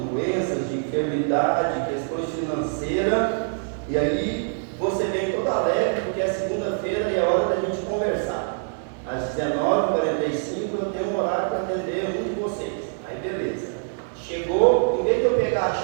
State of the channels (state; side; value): silent; left; digital silence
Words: de enfermidade, questões financeiras, e aí você vem todo alegre, porque é segunda-feira e é hora da gente conversar. Às 19h45 eu tenho um horário para atender um de vocês. Aí beleza. Chegou, em vez de eu pegar a